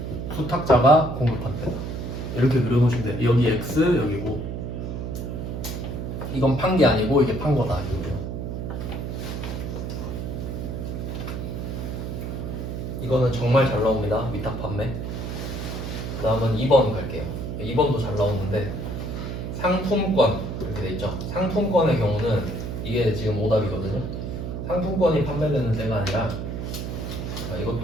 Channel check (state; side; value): noise; right; hum, 5 dB below the sound